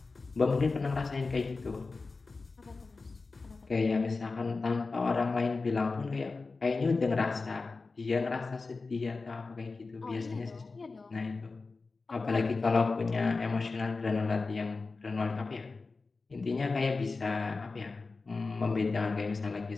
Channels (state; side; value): quieter; right; 4.0 dB